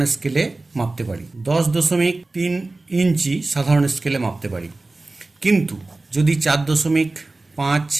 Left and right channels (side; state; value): left; quieter; 3.2 dB